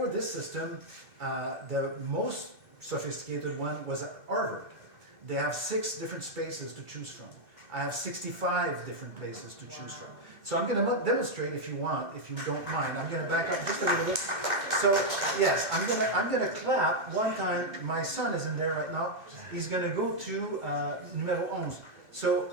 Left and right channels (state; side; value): late; left; 2.3 ms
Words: this system, the most sophisticated one was at Harvard. They have 6 different spaces to choose from. I have 65 different places to choose from. So I'm going to demonstrate if you want, if you don't mind. I'm going to back up just a little bit. So yes, I'm going to clap one time. My son is in there right now. He's going to go to numero 11.